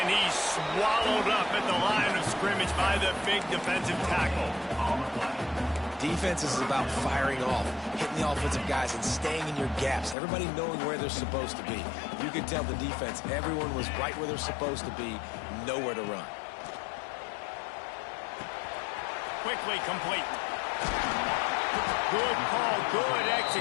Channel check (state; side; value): drops out; right; at 10.2 s